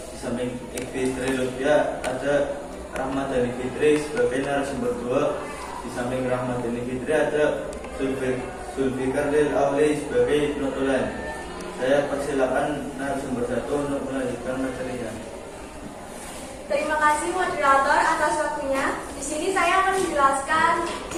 Di samping Niki Trulvia ada Rahmadani Fitri sebagai narasumber 2. Di samping Rahmadani Fitri ada Zulfikar Lil Auli sebagai notulen. Saya persilakan narasumber 1 untuk melanjutkan materinya. Terima kasih moderator atas waktunya. Di sini saya akan menjelaskan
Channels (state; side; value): identical; both; correlation 1.00